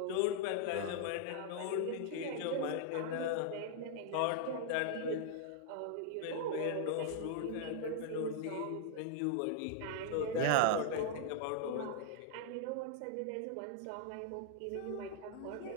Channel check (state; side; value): different; both; correlation -0.01